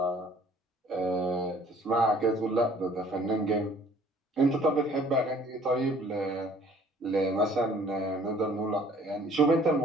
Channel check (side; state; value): both; normal; correlation 0.56